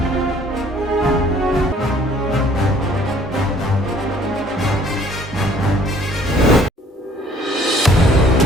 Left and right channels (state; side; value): normal; both; correlation 0.57